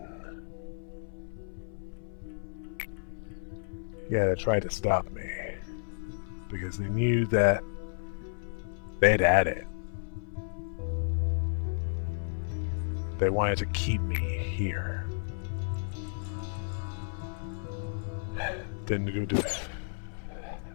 Yeah, they tried to stop me because they knew that they'd had it. They wanted to keep me here. Didn't do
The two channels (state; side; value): silent; right; 56 dB below the other